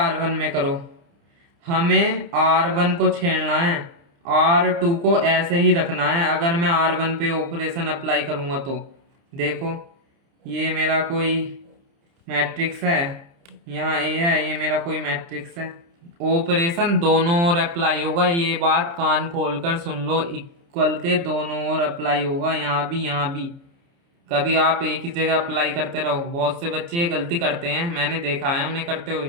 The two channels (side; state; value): left; late; 29 ms